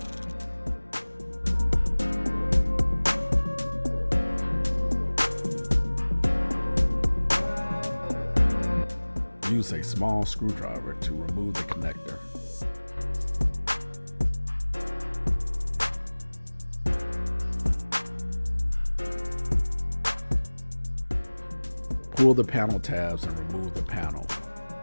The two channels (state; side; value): inverted; both; correlation -1.00